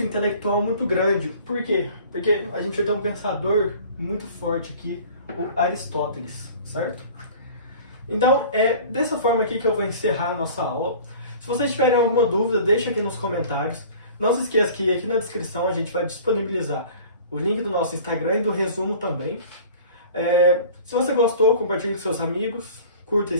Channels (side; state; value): both; inverted; correlation -0.44